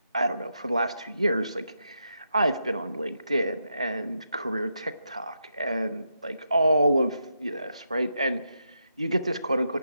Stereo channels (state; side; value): inverted; both; correlation -0.83